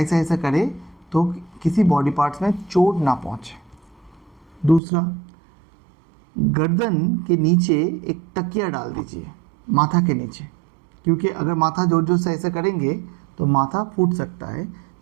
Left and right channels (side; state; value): left; drops out; at 4.8 s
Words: ऐसा करे तो किसी बॉडी पार्ट्स में चोट ना पहुंचे। दूसरा, गर्दन के नीचे एक तकिया डाल दीजिए, माथा के नीचे, क्योंकि अगर माथा जोर जोर से ऐसा करेंगे तो माथा फूट सकता है,